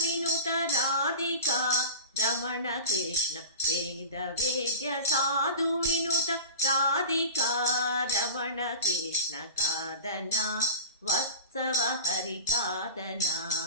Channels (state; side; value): inverted; both; correlation -0.33